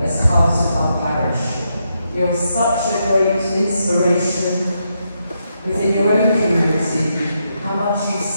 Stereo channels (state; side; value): inverted; both; correlation -0.81